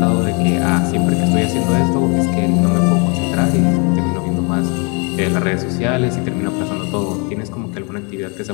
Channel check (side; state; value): right; quieter; 34.1 dB